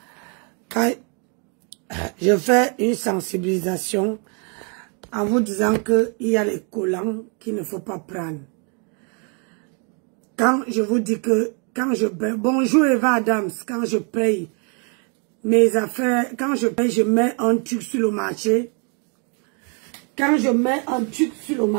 Quand je fais une sensibilisation en vous disant qu'il y a les collants qu'il ne faut pas prendre. Quand je vous dis que quand je paye, bonjour Eva Adams, quand je paye mes affaires, quand je paye, je mets un truc sur le marché. Quand je mets un truc sur le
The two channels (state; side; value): quieter; left; 37.6 dB